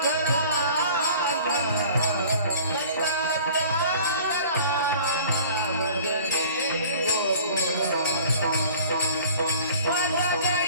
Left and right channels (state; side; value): inverted; both; correlation -0.47